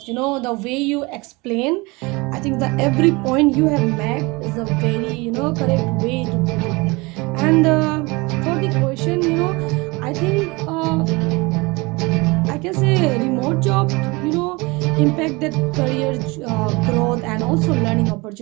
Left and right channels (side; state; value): left; quieter; 25.0 dB